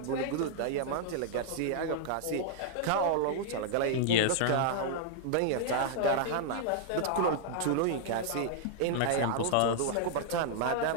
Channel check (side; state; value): both; different; correlation -0.01